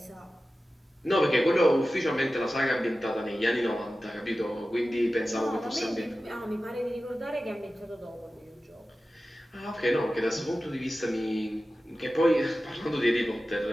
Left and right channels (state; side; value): normal; both; correlation 0.95